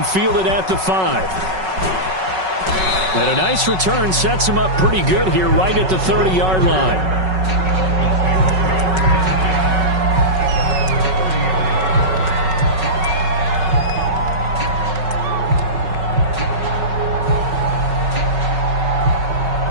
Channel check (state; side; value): late; left; 5.4 ms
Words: fielded at the 5. And a nice return sets him up pretty good here right at the 30-yard line.